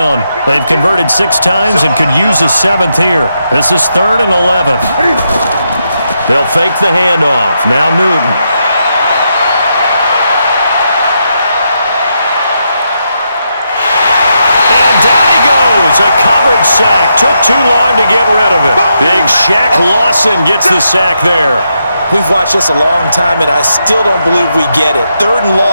They've converted 6 times and could use a 7th here. This is 3rd and 11. They'll fake the handoff. Now Newton. And down he goes. A coverage sack. Took too long to get rid of it. Big Shaq Lawson gets the sack there. We've watched this a long time, and I still don't believe we get it. 3rd and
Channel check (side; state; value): both; inverted; correlation -0.82